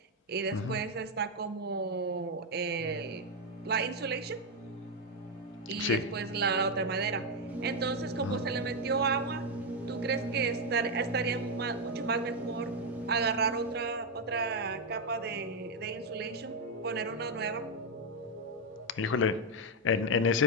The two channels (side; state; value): both; normal; correlation 0.03